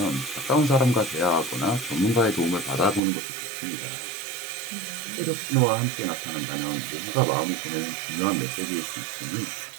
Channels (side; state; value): left; drops out; at 3.0 s